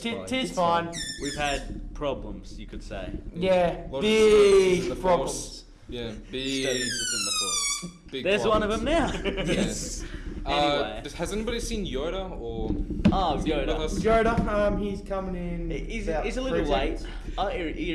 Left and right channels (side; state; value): both; identical; correlation 1.00